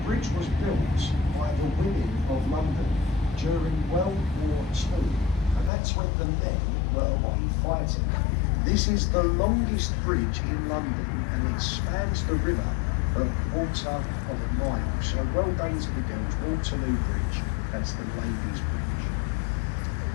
bridge was built by the women of London during World War II, and that's when the men were away fighting. This is the longest bridge in London, and it spans the river a quarter of a mile. So well done to the girls. Waterloo Bridge, that's the Ladies' Bridge.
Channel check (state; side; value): drops out; right; at 5.7 s